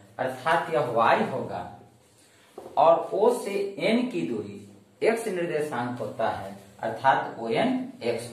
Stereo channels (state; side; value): identical; both; correlation 1.00